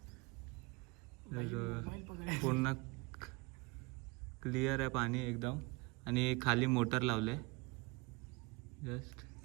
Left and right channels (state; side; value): quieter; left; 26.6 dB